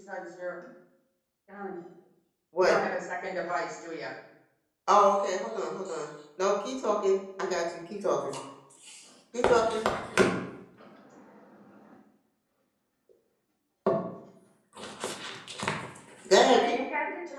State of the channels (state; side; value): identical; both; correlation 1.00